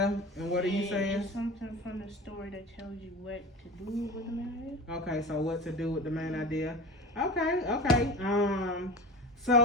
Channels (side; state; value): both; normal; correlation 0.31